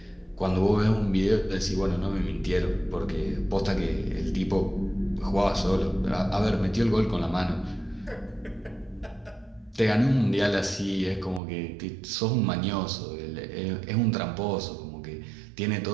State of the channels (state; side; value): drops out; left; at 11.4 s